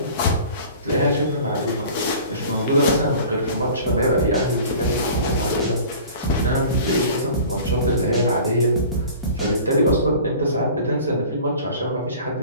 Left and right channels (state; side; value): inverted; both; correlation -0.43